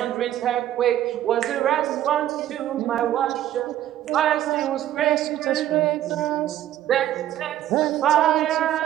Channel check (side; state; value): left; quieter; 12.5 dB